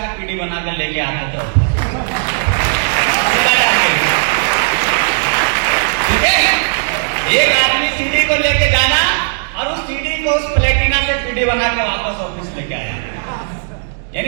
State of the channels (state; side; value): silent; left; digital silence